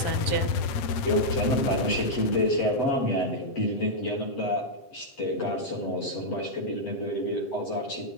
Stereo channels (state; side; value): late; right; 7.9 ms